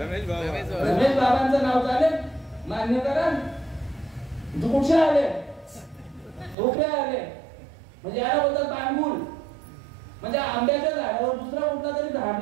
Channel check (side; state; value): left; drops out; at 6.6 s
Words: बाबांचं नाव चालेल? मान्य करा. कुठे आले? ढोकळे आले म्हणजे याला बोलतात पाणगुल. म्हणजे आंब्याच्या झाडावर दुसरा कुठला तरी झाड